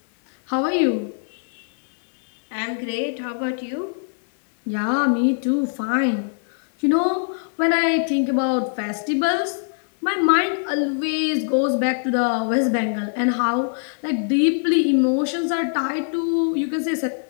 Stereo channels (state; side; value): silent; right; digital silence